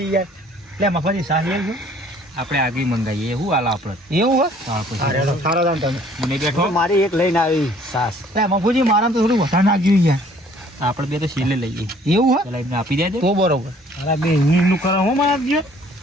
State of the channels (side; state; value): both; normal; correlation 0.57